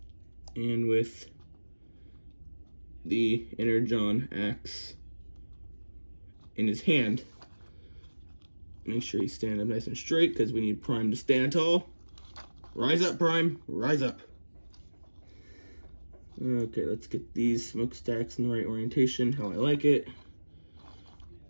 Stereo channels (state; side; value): inverted; both; correlation -1.00